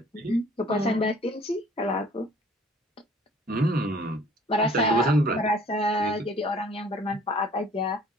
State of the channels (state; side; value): normal; both; correlation 0.54